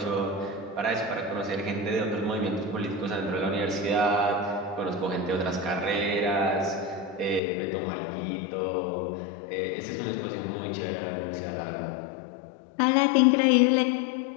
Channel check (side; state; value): right; drops out; at 7.4 s